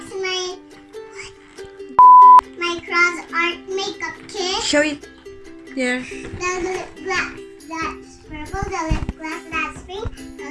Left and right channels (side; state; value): both; identical; correlation 1.00